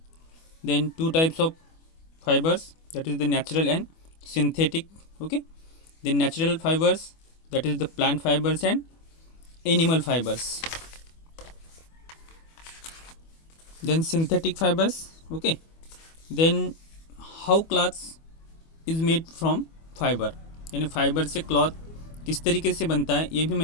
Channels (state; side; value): late; right; 25 ms